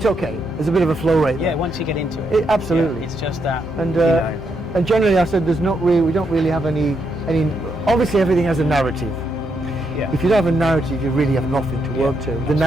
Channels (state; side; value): normal; both; correlation 0.79